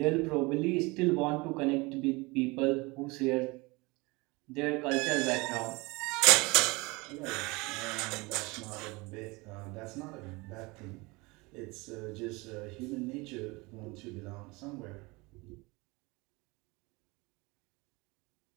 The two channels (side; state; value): left; quieter; 24.9 dB